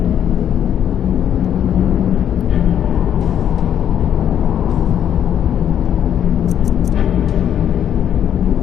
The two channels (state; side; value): quieter; right; 9.6 dB